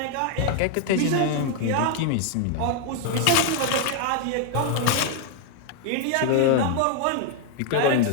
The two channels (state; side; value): different; both; correlation 0.00